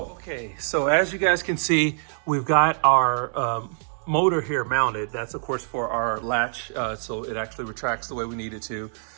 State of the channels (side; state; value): left; silent; digital silence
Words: Okay, so as you guys can see, we've got our motor here mounted. That's of course for our latch, so it actually retracts the way we need it to.